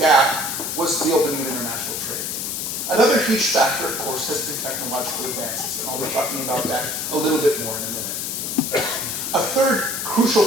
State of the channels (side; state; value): left; noise; hiss, 3 dB below the sound